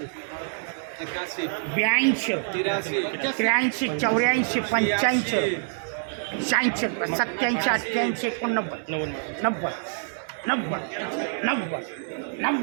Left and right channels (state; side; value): silent; left; 61 dB below the other